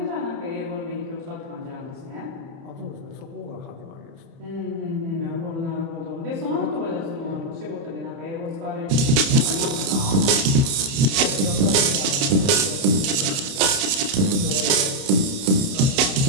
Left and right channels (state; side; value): late; left; 30 ms